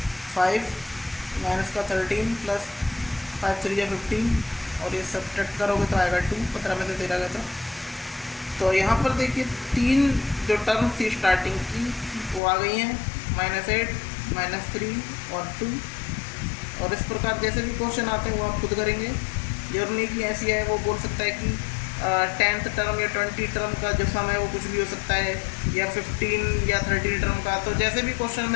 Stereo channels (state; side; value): drops out; right; at 12.4 s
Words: 5, -13 प्लस 5 3 या 15, और ये सब्ट्रैक्ट करोगे तो आएगा 2। 15 में से 13 गया था। तो यहाँ पर देखिए 3 जो टर्म थी स्टार्टिंग की वो आ गई हैं, -8 -3 और 2। और इस प्रकार जैसे भी क्वेश्चन आते हैं वो आप खुद करेंगे। जरूरी नहीं कि ऐसी है, वो बोल सकता है कि 10th टर्म या 20 टर्म का जो सम है वो कुछ भी हो सकता है, या 15 या 30 टर्म का। तो जैसे भी क्वेश्चन